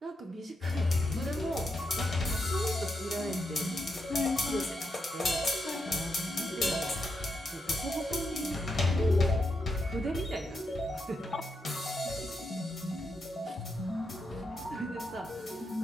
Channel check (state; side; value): normal; both; correlation 0.83